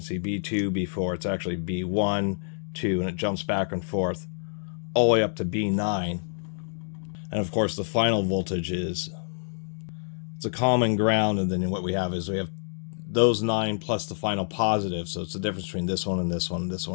see B2, B4, it's actually B1, 2, and it jumps back and forth all the way up to B9. And of course the final voltage is, it's a common ground, and then what we have is we have those 9 plus the final positive. So it's the difference between this one and this one, this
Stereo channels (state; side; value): silent; right; digital silence